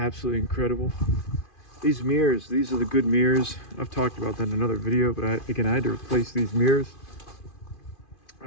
incredible. These mirrors, these are the good mirrors. I've talked about that in another video, but I had to replace these mirrors. The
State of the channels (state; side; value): late; right; 2.5 ms